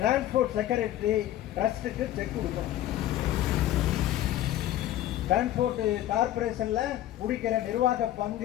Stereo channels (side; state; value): right; quieter; 13.3 dB